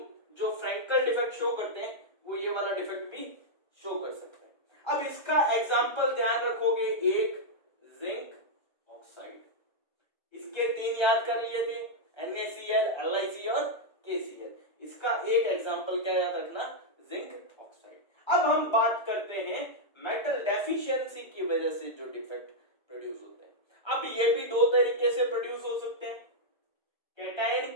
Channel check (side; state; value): right; late; 1.3 ms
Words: जो फ्रैंकल डिफेक्ट शो करते हैं वो ये वाला डिफेक्ट भी शो कर सकते हैं। अब इसका एग्जांपल ध्यान रखोगे, एक जिंक ऑक्साइड, इसके 3 याद कर लिए थे, NaCl, LiC और KCl। इसका एक एग्जांपल क्या याद रखना, जिंक ऑक्साइड। अब हम बात करते हैं मेटल डेफिशिएंसी की वजह से जो डिफेक्ट प्रोड्यूस होते हैं। अब ये भी 2 तरीके से प्रोड्यूस हो सकते हैं,